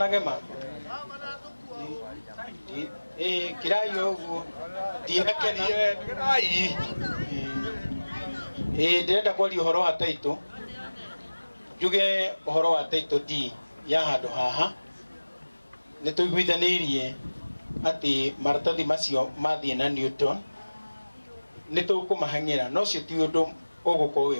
kirayo uguo dinakena ndenda kwaria uhoro wa taito juge uhoro wa taito di ya handu haha ni tuiguithanirie ati maratathi macio mathie na Newton ni tukumahang'ira no cio ti undu ugukorwo wi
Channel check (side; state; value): both; inverted; correlation -1.00